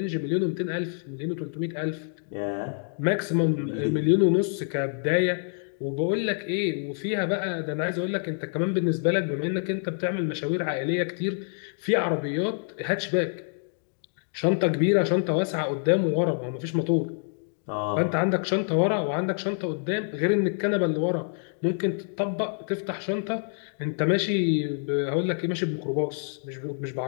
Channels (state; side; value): silent; right; 60 dB below the other